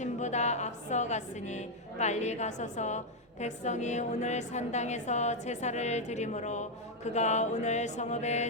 앞서 갔으니 빨리 가소서. 백성이 오늘 산당에서 제사를 드리므로 그가 오늘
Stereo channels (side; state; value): both; normal; correlation 0.01